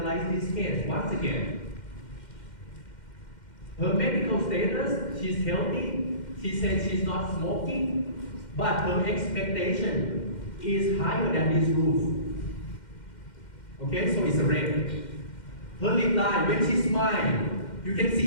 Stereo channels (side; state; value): right; late; 2.1 ms